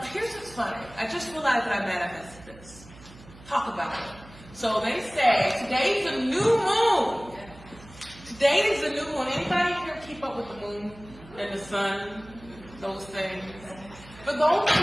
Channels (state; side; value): noise; right; hum, 21 dB below the sound